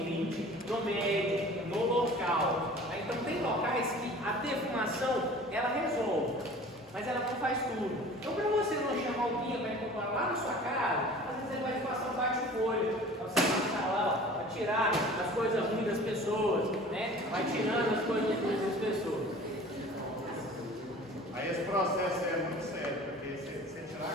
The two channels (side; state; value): both; normal; correlation 0.44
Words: no médio, no local. Então tem locais que a defumação ela resolve, mas ela não faz tudo. Então para você não chamar o guia para incorporar lá na sua casa, às vezes ele vai te passar um bate-folha, para você passar lá, para tirar as coisas ruins das pessoas, né? Vai tirando as coisas ruins das pessoas. Aí esse processo é muito sério, porque você tirar a